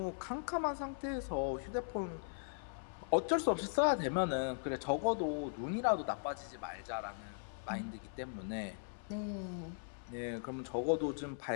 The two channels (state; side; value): silent; right; 52 dB below the other